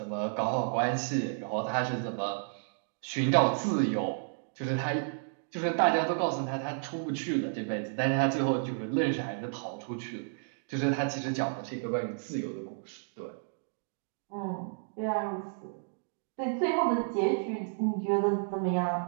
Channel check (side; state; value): left; silent; digital silence